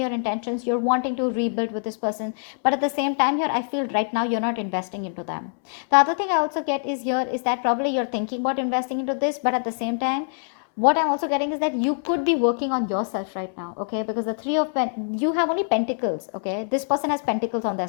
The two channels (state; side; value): silent; right; 62 dB below the other